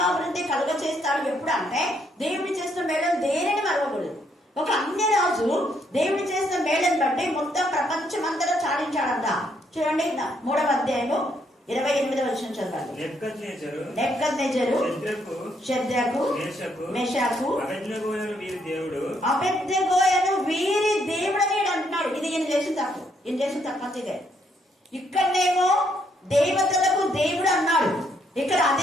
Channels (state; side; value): normal; both; correlation 0.72